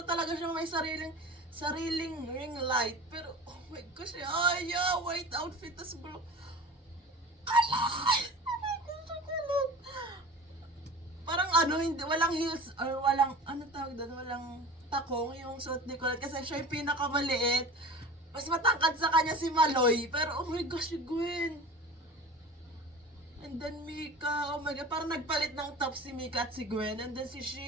talaga siyang may sariling ring light. Pero, oh my gosh, yeah, white outfit, tas blue. Ala! Oh my gosh, ang kulit. Parang ano, hindi, walang heels, or walang, ano tawag doon, walang takong yung suot ni Colette. Kasi siya yung pinakamaliit. Mas matangkad sa kanya si Maloy. Pero, oh my gosh, si Gwen. And then Mika, oh my god, parang nagpalit ng top si Mika at si Gwen. And then si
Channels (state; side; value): normal; both; correlation 0.37